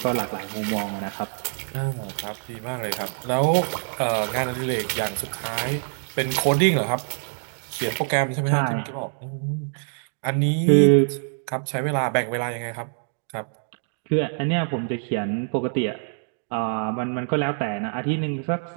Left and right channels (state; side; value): silent; left; 62 dB below the other